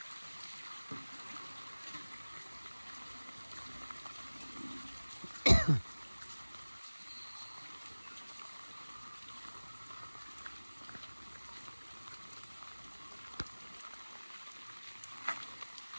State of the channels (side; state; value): both; inverted; correlation -1.00